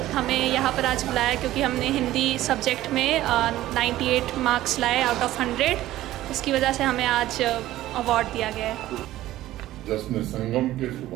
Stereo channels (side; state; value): left; quieter; 15.0 dB